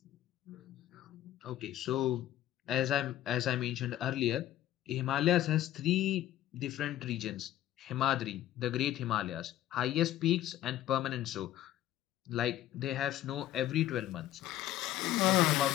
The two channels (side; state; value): right; quieter; 13.1 dB